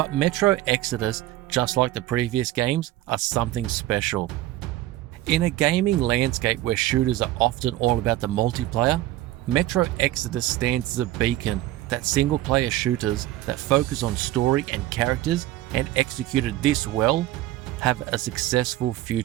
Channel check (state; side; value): quieter; left; 15.3 dB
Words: Metro Exodus, just like the previous games, are something special. In a gaming landscape where shooters are often all about the multiplayer, Metro Exodus stands as a beacon that single-player shooters that focus on story and characters and executed this well have a successful